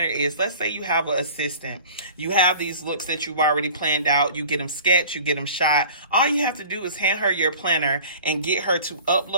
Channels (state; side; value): inverted; both; correlation -0.45